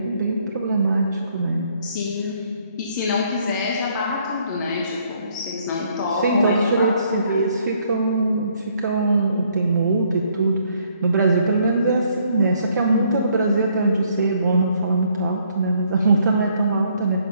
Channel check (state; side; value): inverted; both; correlation -0.67